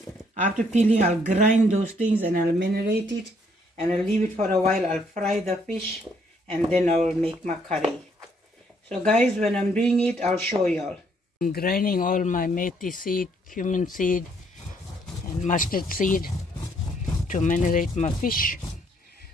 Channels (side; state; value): both; normal; correlation 0.68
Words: After peeling, I'll grind those things and I'll marinate it, and I'll leave it for a while. I'll fry the fish, and then I'll make my curry. So guys, when I'm doing it, I'll show y'all. I'm grinding all my methi seed, cumin seed, and mustard seed to marinate my fish